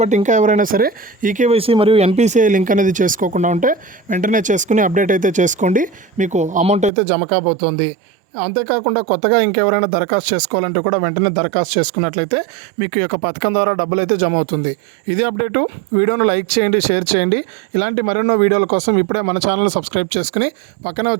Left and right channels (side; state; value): left; drops out; at 6.9 s